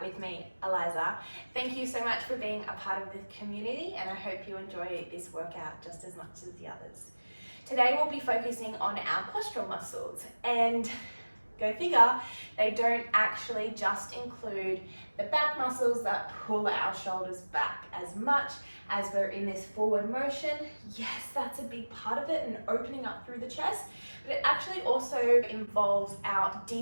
with me, Eliza. Thank you so much for being a part of the community, and I hope you enjoy this workout just as much as the others. Today we'll be focusing on our postural muscles, and go figure, they don't actually just include the back muscles that pull our shoulders back as much as we're in this forward motion. Yes, that's a big part of it, and opening up through the chest, but it actually also involves our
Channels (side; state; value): both; inverted; correlation -1.00